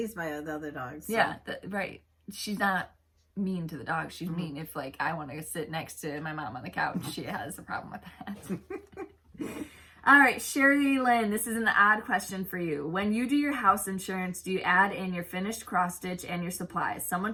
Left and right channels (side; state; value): both; identical; correlation 1.00